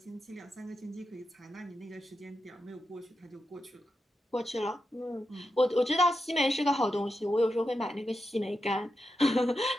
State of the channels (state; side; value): normal; both; correlation 0.88